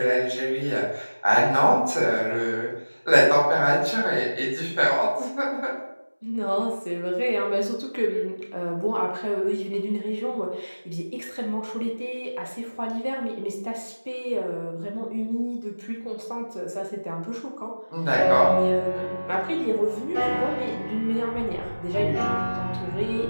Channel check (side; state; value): both; inverted; correlation -1.00